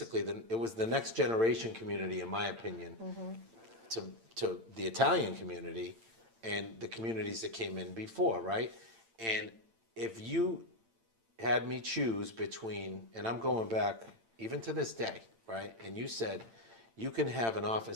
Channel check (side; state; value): left; late; 8.9 ms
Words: it was the next generation community, in my opinion, to the Italian community and the communities that came in before, right? And if you had me choose between, and I'm going back even to this day, right? And you said you can have an